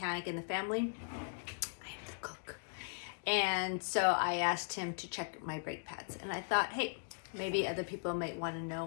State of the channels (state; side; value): silent; right; digital silence